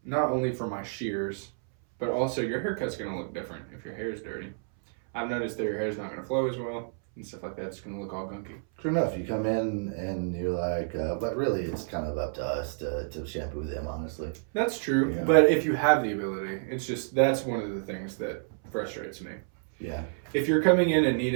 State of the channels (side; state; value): left; silent; 58 dB below the other